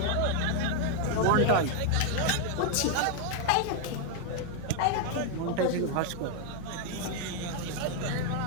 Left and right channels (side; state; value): both; different; correlation 0.00